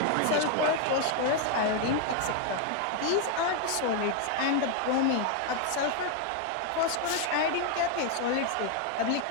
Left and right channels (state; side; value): different; both; correlation 0.01